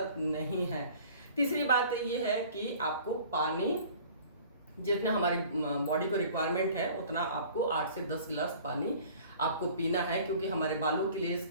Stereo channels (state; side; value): inverted; both; correlation -0.48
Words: नहीं है। तीसरी बात ये है कि आपको पानी जितना हमारी बॉडी को रिक्वायरमेंट है उतना आपको 8 से 10 गिलास पानी आपको पीना है, क्योंकि हमारे बालों के लिए,